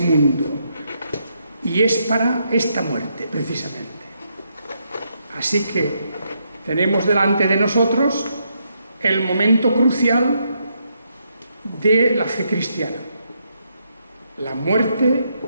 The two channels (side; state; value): both; inverted; correlation -0.78